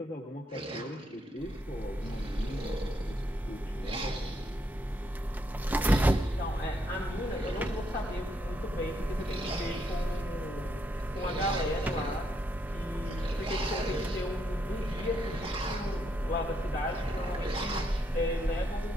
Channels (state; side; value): normal; both; correlation 0.76